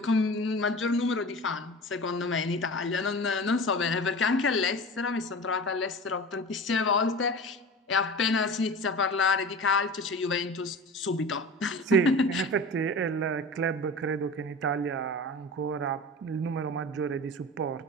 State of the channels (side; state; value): both; normal; correlation 0.34